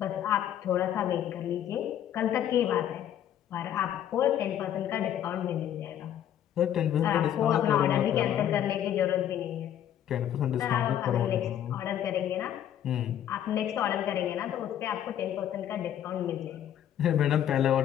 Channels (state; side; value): quieter; right; 10.6 dB